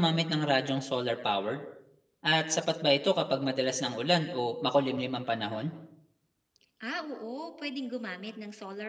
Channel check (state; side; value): identical; both; correlation 1.00